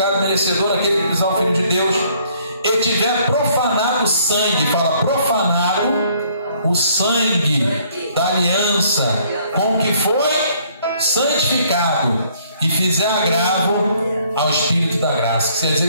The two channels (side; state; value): both; inverted; correlation -0.63